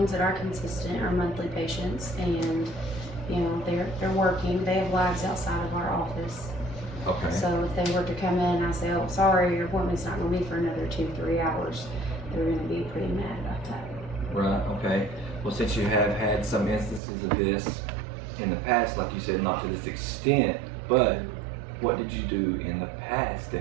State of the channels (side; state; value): left; drops out; at 17.0 s